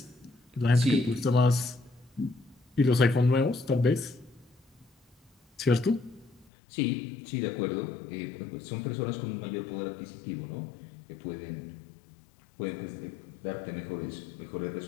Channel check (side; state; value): right; drops out; at 6.5 s